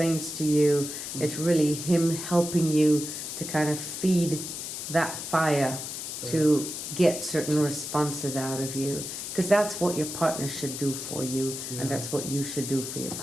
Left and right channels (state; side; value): noise; left; hiss, 7 dB below the sound